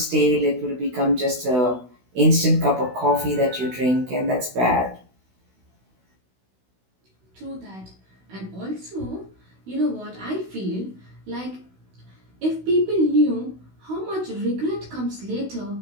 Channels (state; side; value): late; left; 16 ms